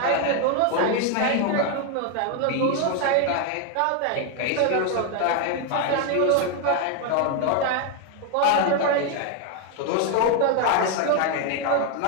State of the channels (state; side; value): different; both; correlation 0.01